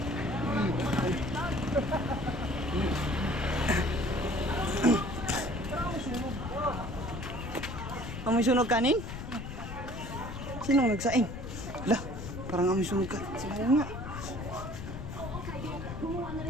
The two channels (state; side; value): noise; left; rumble, 8 dB below the sound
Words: Amoy sunog kanin? Sinong nagsaing? Lah, parang amoy sunog ka. Sila nga. Gumawa na